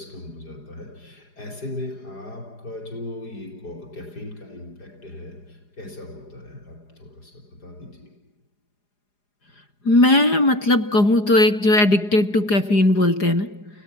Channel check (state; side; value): late; right; 4.9 ms